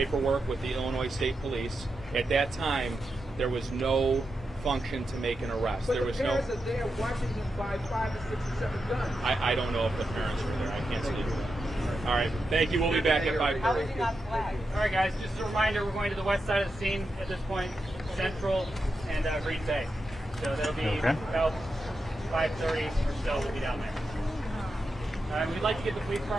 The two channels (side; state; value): both; normal; correlation 0.88